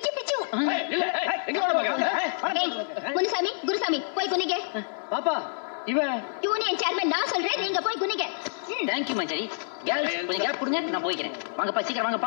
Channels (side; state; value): right; silent; digital silence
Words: எங்க முனுசாமி குருசாமி போய் குனிங்க. பாப்பா இவன் யூனியன் சேர்மன் நான் சொல்றேன், நீங்க போய் குனிங்க. தேங்க்யூ மஞ்சரி. கேர்ள்ஸ் கொஞ்சம் கேப் கொடுங்க, நான் போய்க்கிறேன். வாங்கப்பா சீக்கிரம்